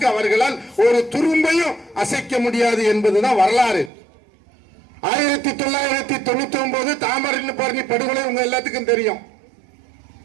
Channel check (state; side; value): drops out; left; at 3.9 s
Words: அவர்களால் ஒரு துரும்பையும் அசைக்க முடியாது என்பதுதான் வரலாறு. 1999 தாமிரபரணி படுகொலை உங்க எல்லாத்துக்கும் தெரியும்.